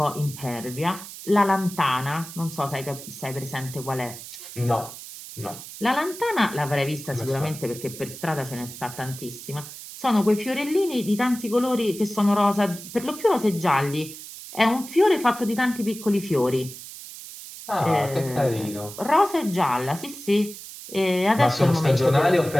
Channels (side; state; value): right; noise; hiss, 13 dB below the sound